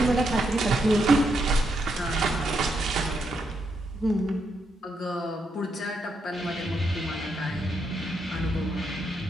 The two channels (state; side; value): normal; both; correlation 0.79